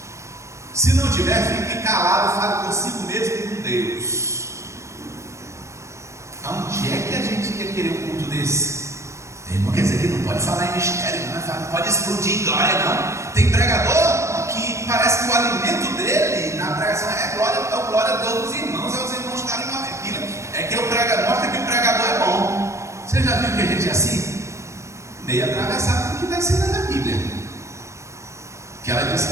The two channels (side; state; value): left; late; 0.14 ms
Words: Se não tiver, fique calado, fale consigo mesmo e com Deus. Onde é que a gente ia querer um culto desse? Não quer dizer que não pode falar em mistério, não pode explodir em glória, não. Tem pregador que parece que o alimento dele na pregação é glória a Deus dos irmãos, é os irmãos estarem uma pilha. É que o pregador mostra que o pregador é bom. Você já viu que a gente é assim? Meio atravessado do que está ensinando na Bíblia. Que ela diz